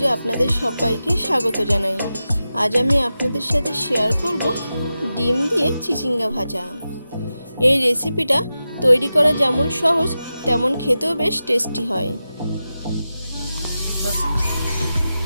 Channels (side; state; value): both; inverted; correlation -0.92